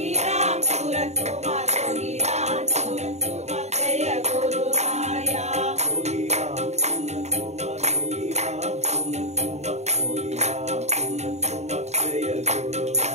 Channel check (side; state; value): left; late; 0.32 ms